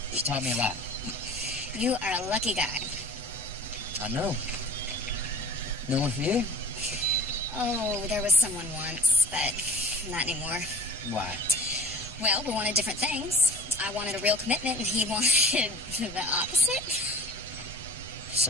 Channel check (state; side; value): normal; both; correlation 0.40